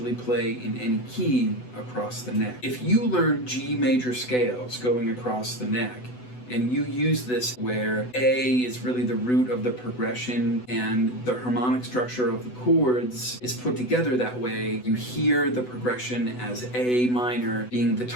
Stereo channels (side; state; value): right; late; 8.0 ms